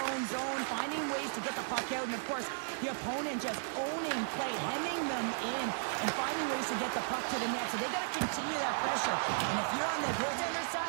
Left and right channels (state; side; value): silent; left; digital silence